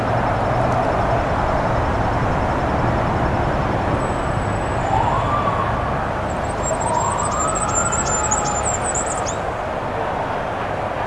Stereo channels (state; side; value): identical; both; correlation 1.00